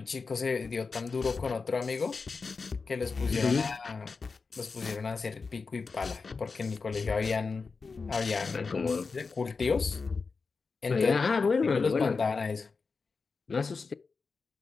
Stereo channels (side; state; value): right; quieter; 4.6 dB